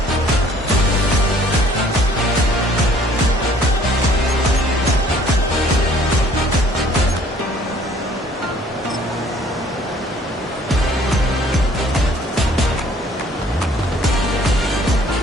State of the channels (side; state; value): both; normal; correlation 0.57